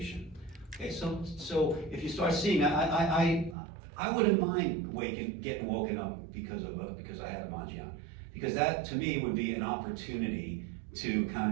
Okay, so if you start seeing, I wouldn't mind getting woken up because I have a Manjian. Because that, to me, would be an opportunity to kind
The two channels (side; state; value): left; drops out; at 3.6 s